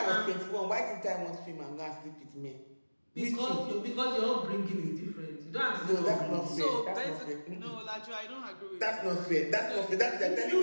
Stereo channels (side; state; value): both; inverted; correlation -1.00